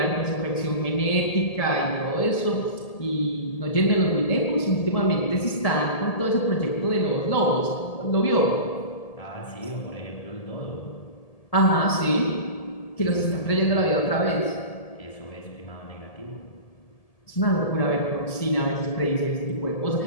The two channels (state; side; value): late; right; 1.8 ms